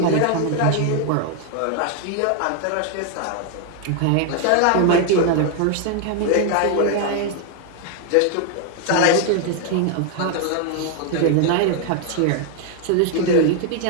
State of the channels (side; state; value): both; different; correlation 0.00